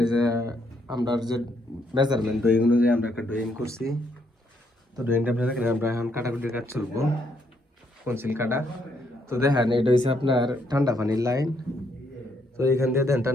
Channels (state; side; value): normal; both; correlation 0.73